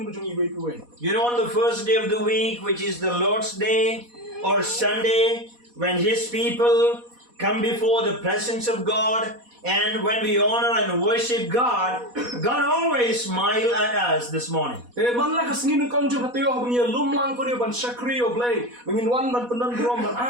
ka jong iwe piwe. You know, on the first day of the week, which is the Lord's Day or Sunday, when His people come before the presence of God, and when we honor and worship God, God always smiles at us this morning. Man la ka singi ng kong jong patio bang ya lumlang ko ni ban shakri o play bangin wan ban penan brom ban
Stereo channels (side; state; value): left; late; 4.1 ms